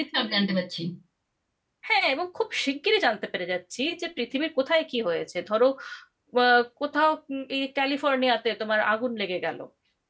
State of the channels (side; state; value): both; identical; correlation 1.00